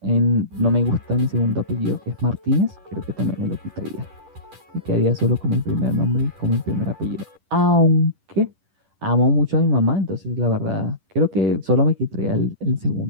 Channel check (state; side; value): late; left; 10 ms